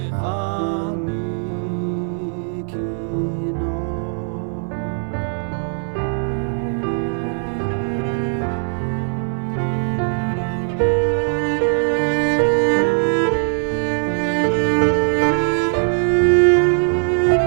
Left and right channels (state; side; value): silent; left; 62 dB below the other